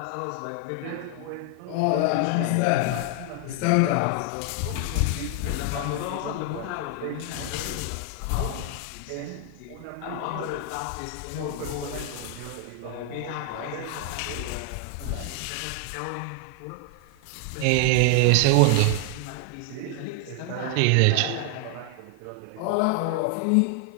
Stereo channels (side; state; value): both; different; correlation 0.00